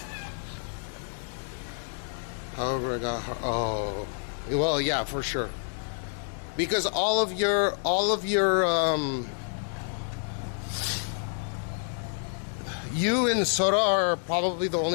However, I got her. Oh, well, yeah, for sure. Because all of your, you and Sora are probably the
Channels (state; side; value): silent; right; digital silence